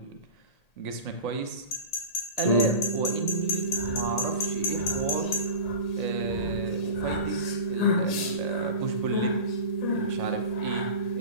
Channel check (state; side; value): late; right; 1.8 ms